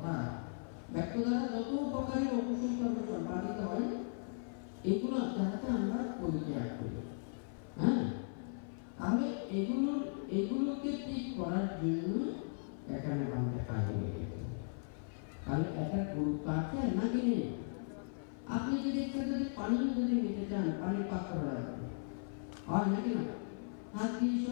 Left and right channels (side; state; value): right; silent; 53 dB below the other